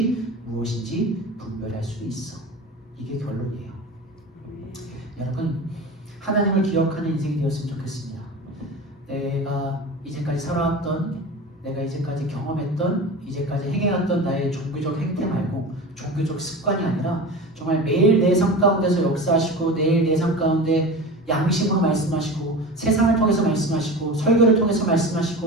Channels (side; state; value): both; normal; correlation 0.31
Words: 무엇인지 분별할 수 있어. 이게 결론이에요. 여러분, 하나님을 기억하는 인생이 되었으면 좋겠습니다. 내가 이제까지 살아왔던, 내가 이제까지 경험했던, 이제까지 행해왔던 나의 종교적 행태 말고 종교적 습관이 아니라 정말 매일 내 삶 가운데서 역사하시고 매일 내 삶 가운데 양심으로 말씀하시고 세상을 통해서 말씀하시고 설교를 통해서